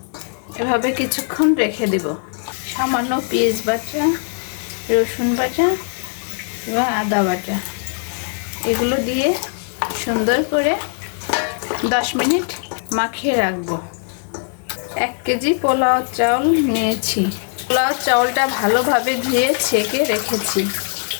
এভাবে কিছুক্ষণ রেখে দেব। সামান্য পেঁয়াজ বাটা, রসুন বাটা এবং আদা বাটা এগুলো দিয়ে সুন্দর করে 10 মিনিট মাখিয়ে রাখবো। 1 কেজি পোলাও চাউল নিয়েছি। পোলাও চাউলটা ভালোভাবে ধুয়ে ছেঁকে রেখেছি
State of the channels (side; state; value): right; silent; 66 dB below the other